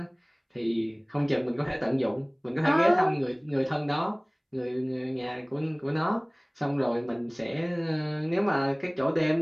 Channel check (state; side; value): identical; both; correlation 1.00